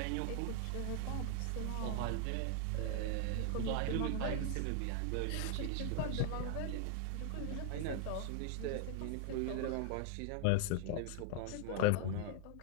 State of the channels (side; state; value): both; different; correlation 0.00